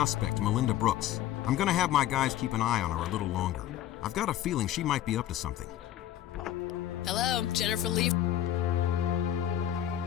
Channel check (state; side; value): quieter; right; 12.1 dB